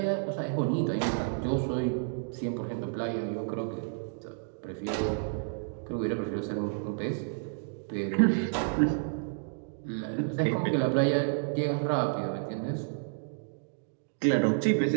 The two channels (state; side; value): silent; left; digital silence